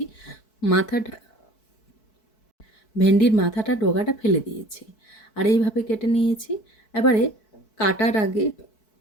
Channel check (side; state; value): right; late; 4.6 ms